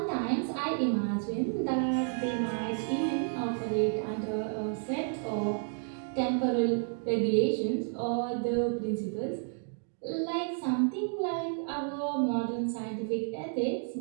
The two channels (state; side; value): silent; left; 57 dB below the other